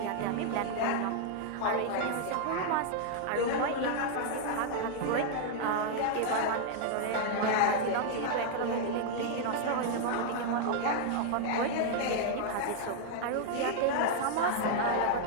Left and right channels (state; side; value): different; both; correlation -0.01